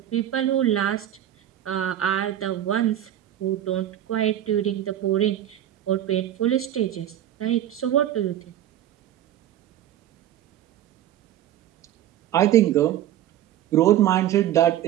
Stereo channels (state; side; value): quieter; left; 11.8 dB